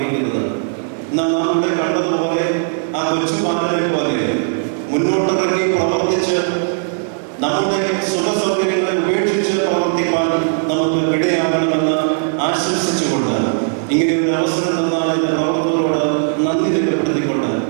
എന്നാൽ നാം ഇവിടെ കണ്ടതുപോലെ ആ കൊച്ചുപാലനെ പോലെ മുന്നോട്ടിറങ്ങി പ്രവർത്തിച്ച് നമ്മുടെ സുഖസൗകര്യങ്ങളെ ഉപേക്ഷിച്ച് പ്രവർത്തിക്കാൻ നമുക്ക് ഇടയാകണമെന്ന് ആശംസിച്ചുകൊണ്ട് ഇങ്ങനെ ഒരു അവസരം തന്നാൽ എന്റെ പ്രവർത്തകരോട് നന്ദി രേഖപ്പെടുത്തിക്കൊണ്ട്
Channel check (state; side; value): silent; left; digital silence